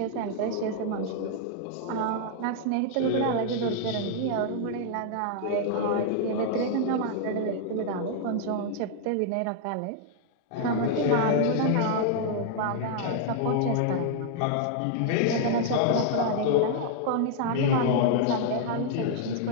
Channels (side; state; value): both; different; correlation -0.01